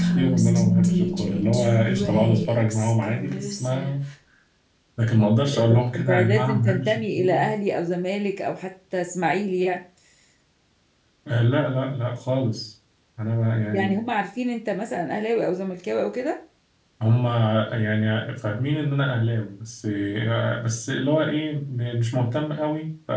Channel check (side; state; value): both; identical; correlation 1.00